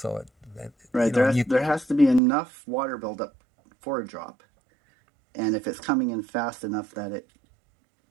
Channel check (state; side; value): drops out; left; at 2.2 s